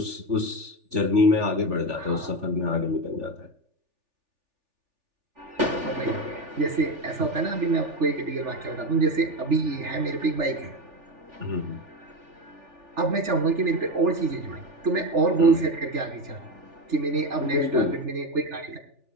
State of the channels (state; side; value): late; left; 3.4 ms